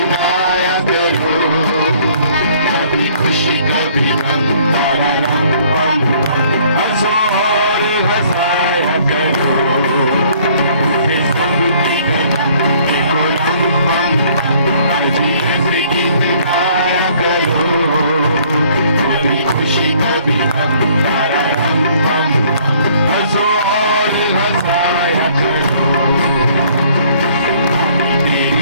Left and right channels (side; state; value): both; inverted; correlation -0.60